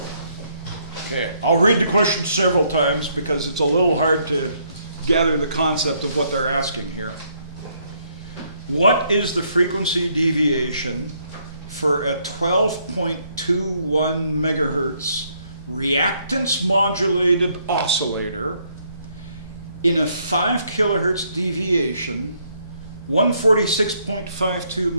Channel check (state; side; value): inverted; both; correlation -0.71